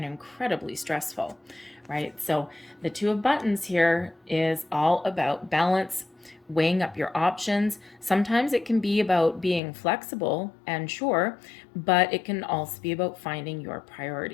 incredibly stressful, right? So the Two of Buttons here is all about balance, weighing up your options. Sometimes it can be about being flexible and sure, but it can also be about finding your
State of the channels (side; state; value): right; drops out; at 9.6 s